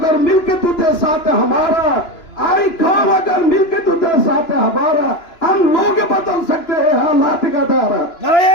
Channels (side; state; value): right; late; 2.9 ms